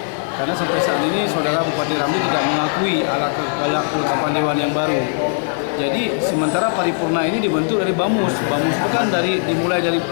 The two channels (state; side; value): silent; right; digital silence